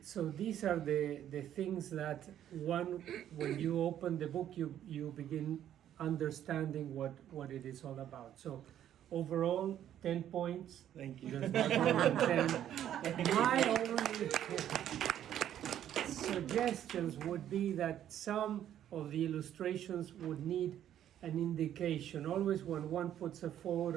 So these are the things that when you open the book, you begin understanding what it is all about. So overall, 10 points. Thank you. There's not more than 10. My only suggestions would be that some of the illustrations would need an indication. Always when one puts a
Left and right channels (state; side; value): quieter; left; 10.9 dB